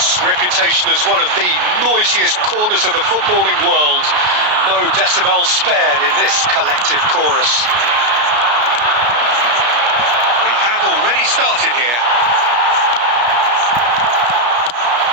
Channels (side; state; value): left; late; 33 ms